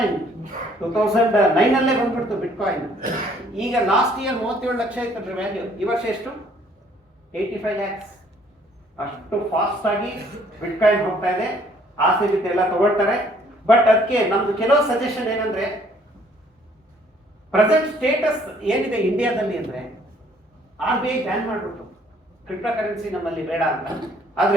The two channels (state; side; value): normal; both; correlation 0.61